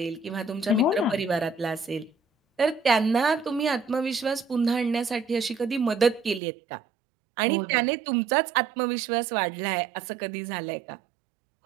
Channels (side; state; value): left; drops out; at 6.4 s